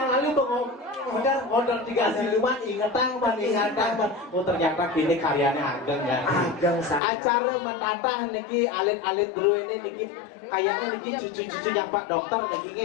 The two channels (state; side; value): drops out; right; at 7.0 s